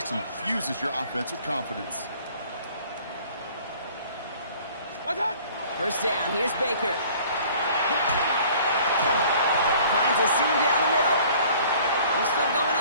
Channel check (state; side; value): inverted; both; correlation -0.52